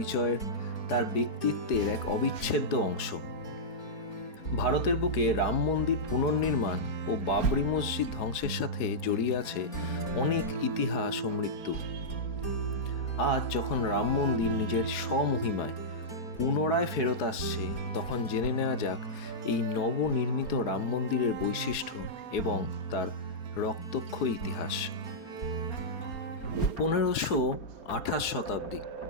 তার ব্যক্তিত্বের এক অবিচ্ছেদ্য অংশ। ভারতের বুকে রাম মন্দির পুনর্নির্মাণ ও বাবরি মসজিদ ধ্বংসের সাথে জড়িয়ে আছে অনেক ইতিহাস ও মৃত্যু। আজ যখন রাম মন্দির নিজের স্বমহিমায় পুনরায় ফেরত আসছে, তখন জেনে নেওয়া যাক এই নবনির্মিত রাম মন্দিরের বৈশিষ্ট্য এবং তার রক্তক্ষয়ী ইতিহাস। 1528 শতাব্দী,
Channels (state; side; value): late; right; 4.8 ms